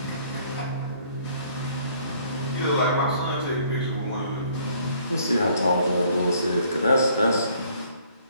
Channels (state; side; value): inverted; both; correlation -0.61